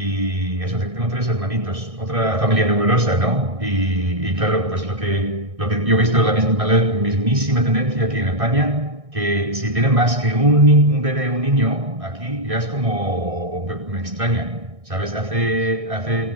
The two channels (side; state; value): left; late; 1.6 ms